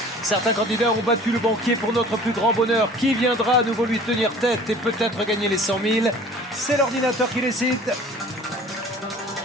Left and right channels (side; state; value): both; normal; correlation 0.47